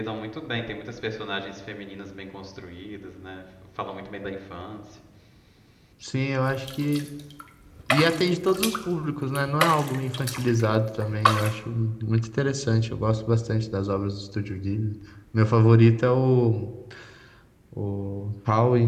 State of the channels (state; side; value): identical; both; correlation 1.00